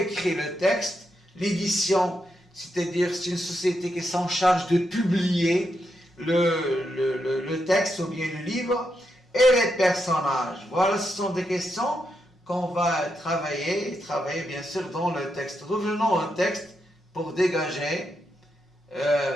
le texte, l'édition, c'est-à-dire c'est une société qui s'en charge de publier le texte ou bien le livre, et les personnages. Voilà, ce sont des questions qu'on va travailler bien sûr dans le texte. Revenons au texte pour dégager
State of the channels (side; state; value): both; normal; correlation 0.83